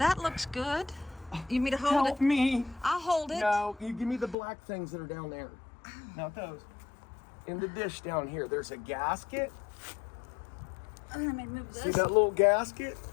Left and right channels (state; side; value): drops out; right; at 4.4 s